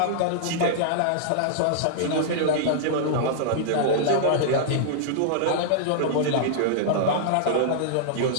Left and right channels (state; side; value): different; both; correlation -0.02